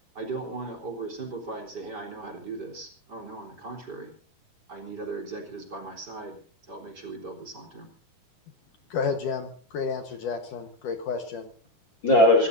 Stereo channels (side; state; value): both; normal; correlation 0.05